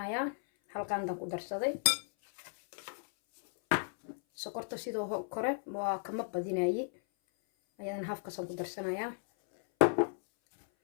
halqaandan ku darsaday sokorta sidoo kore waa kama badinayi ayadana hafkaasaan ku darsanayaa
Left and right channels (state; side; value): silent; right; 55 dB below the other